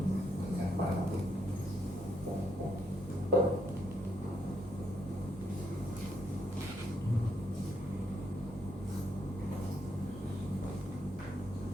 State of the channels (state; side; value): normal; both; correlation 0.76